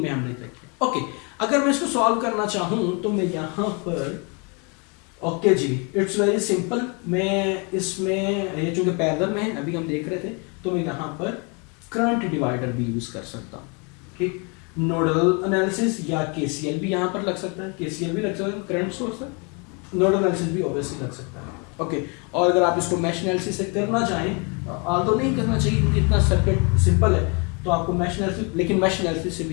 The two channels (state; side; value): quieter; right; 33.1 dB